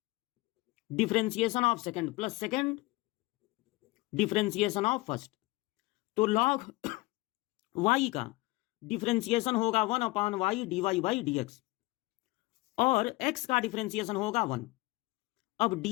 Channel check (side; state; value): right; quieter; 21.3 dB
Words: differentiation of second plus second differentiation of first. तो log y का डिफरेंशिएशन होगा 1/y dy/dx और x का डिफरेंशिएशन होगा 1। अब